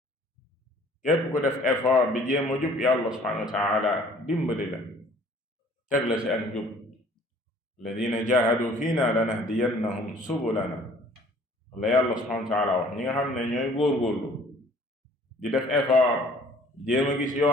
képp ku def effort bi jéem a jub yàlla subhanahu wa taala dimbali la teg la ci ak njub alladina jahadu fiina lanahdiyannahum subulana la yàlla subhanahu wa taala wax ñi nga xam ne ñooy góorgóorlu di def effort jéem a gis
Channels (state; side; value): normal; both; correlation 0.55